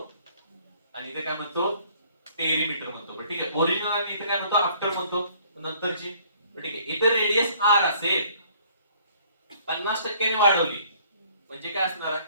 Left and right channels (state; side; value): inverted; both; correlation -0.59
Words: आणि इथे काय म्हणतो? पेरिमीटर म्हणतो. बरं ठीक आहे. ओरिजिनल आणि इथे काय म्हणतो? आफ्टर म्हणतो, नंतरची. ठीक आहे. इथे रेडियस आर असेल, 50% ने वाढवली म्हणजे काय असणार आहे?